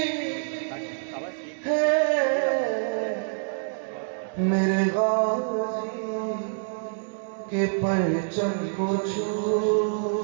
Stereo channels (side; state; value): left; silent; digital silence